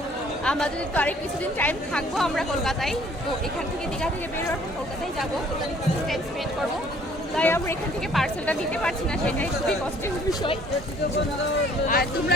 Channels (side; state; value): both; normal; correlation 0.58